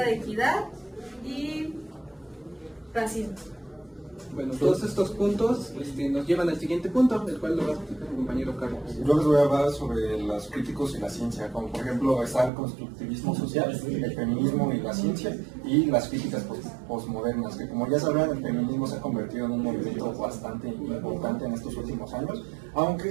de equidad y racismo. Bueno, todos estos puntos nos llevan al siguiente punto, el cual lo va a explicar mi compañero Carlos. Yo les voy a hablar sobre los críticos y la ciencia, como por ejemplo está el constructivismo social, el feminismo y la ciencia, y las críticas postmodernas, que como ya sabrán, el feminismo se ha convertido en un movimiento bastante importante en estos últimos años,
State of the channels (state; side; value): drops out; left; at 12.5 s